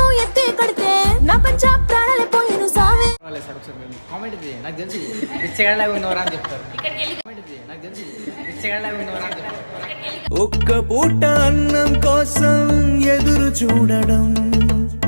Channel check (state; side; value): inverted; both; correlation -1.00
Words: ఎత్తి కడితే నా పంచ ప్రాణాలే పోయిను సావే. కామెంట్ ఇది నాకు తెలిసి పిచ్చగాళ్ళగా ఉన్నవరా అని చెప్తారు. కామెంట్ ఇది నాకు తెలిసి పిచ్చగాళ్ళగా ఉన్నవరా అని చెప్తారు. ఒక్క పూట అన్నం కోసం ఎదురు చూడడం.